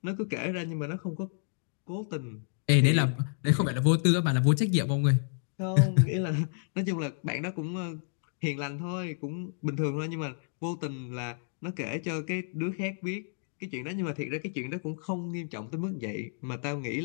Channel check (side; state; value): right; silent; digital silence